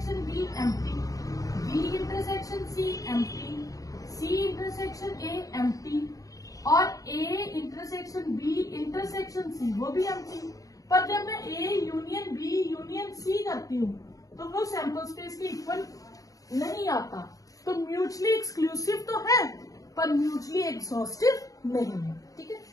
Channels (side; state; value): right; late; 0.17 ms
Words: B empty, B intersection C empty, C intersection A empty और A intersection B intersection C वो भी एम्प्टी। पर जब मैं A union B union C करती हूँ तो वो सैंपल स्पेस के इक्वल नहीं आता। तो म्यूचुअली एक्सक्लूसिव तो है पर म्यूचुअली एग्जॉस्टिव नहीं है। ठीक है।